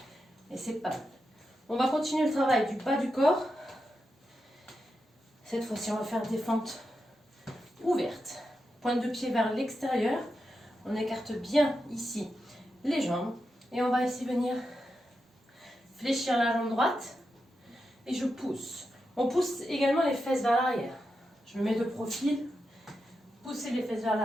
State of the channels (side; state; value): both; normal; correlation 0.88